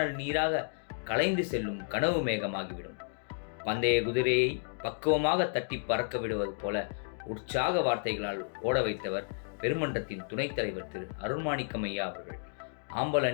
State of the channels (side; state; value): right; silent; digital silence